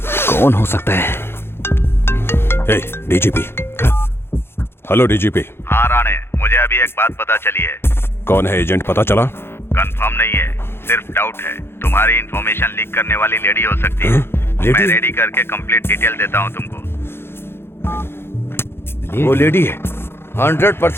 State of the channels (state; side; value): late; right; 0.11 ms